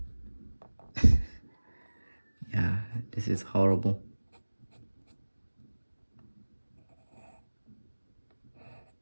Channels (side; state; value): both; inverted; correlation -1.00